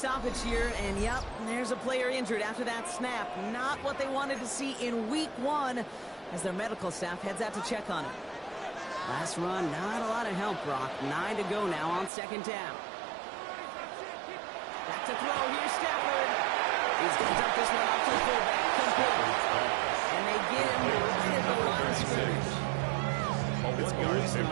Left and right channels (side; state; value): left; drops out; at 12.1 s